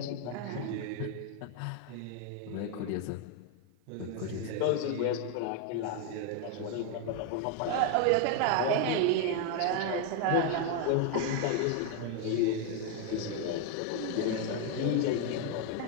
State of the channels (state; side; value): different; both; correlation 0.01